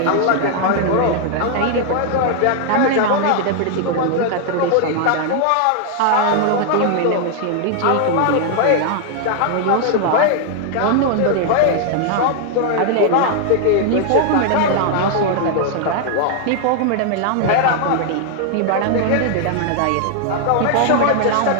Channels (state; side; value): different; both; correlation 0.00